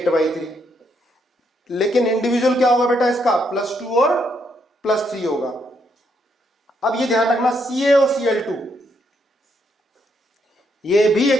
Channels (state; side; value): normal; both; correlation 0.76